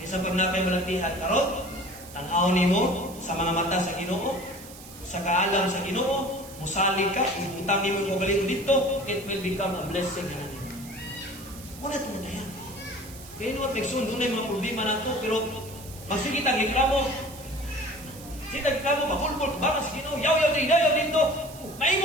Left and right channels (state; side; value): noise; right; hiss, 17 dB below the sound